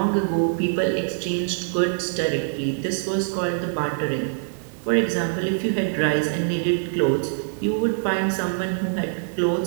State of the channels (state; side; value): silent; left; digital silence